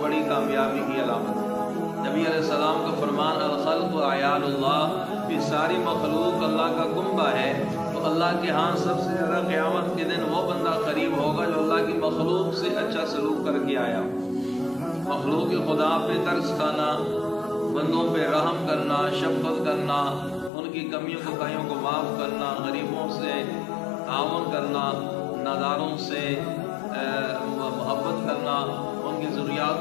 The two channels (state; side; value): drops out; right; at 20.5 s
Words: بڑی کامیابی کی علامت ہے۔ نبی علیہ السلام کا فرمان الخلق عیال اللہ، کہ ساری مخلوق اللہ کا کنبہ ہے، تو اللہ کے ہاں سب سے زیادہ قیامت کے دن وہ بندہ قریب ہوگا جو اللہ کی مخلوق سے اچھا سلوک کر کے آیا۔ مخلوق خدا پہ ترس کھانا، بندوں پہ رحم کرنا، شفقت کرنا، ان کی کمیوں کوتاہیوں کو معاف کرنا، غریبوں سے تعاون کرنا، ناداروں سے محبت کرنا، ان کی